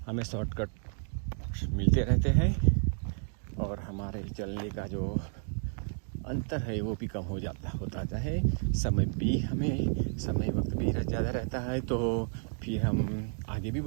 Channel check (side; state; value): left; silent; 57 dB below the other